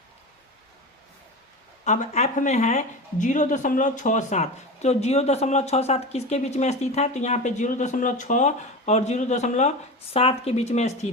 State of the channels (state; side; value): normal; both; correlation 0.26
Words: अब एफ में है 0.67, तो 0.67 किसके बीच में स्थित है, तो यहाँ पे 0.6 और 0.7 के बीच में